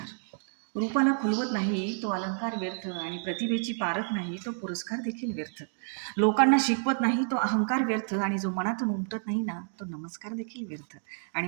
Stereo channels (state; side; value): silent; left; 58 dB below the other